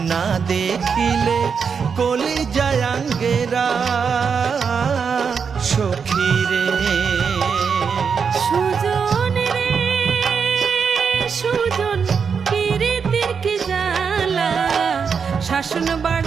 না দেখিলে কলিজায় আঙ্গেরা সখীরে। সুজন রে সুজন, পীড়িতের কি জ্বালা, শাসন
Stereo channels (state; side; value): quieter; left; 6.1 dB